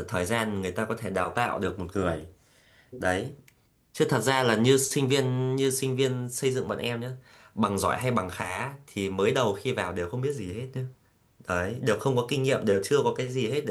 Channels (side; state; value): both; identical; correlation 1.00